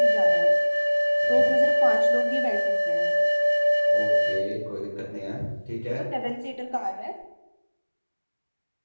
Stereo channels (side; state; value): both; inverted; correlation -1.00